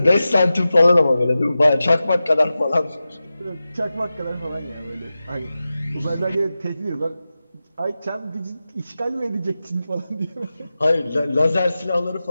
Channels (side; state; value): both; inverted; correlation -0.94